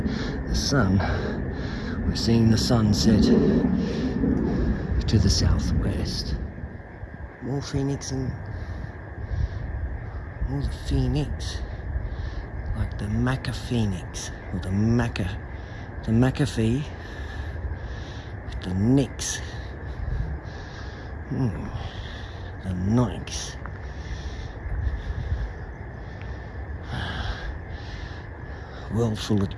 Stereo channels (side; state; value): both; identical; correlation 1.00